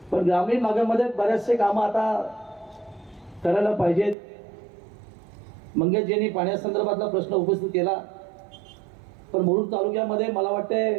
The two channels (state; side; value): drops out; left; at 4.2 s